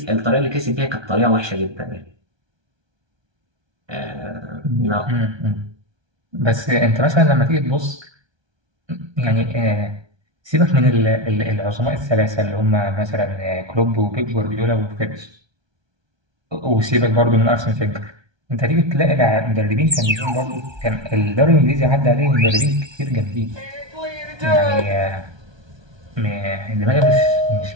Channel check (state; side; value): late; left; 1.3 ms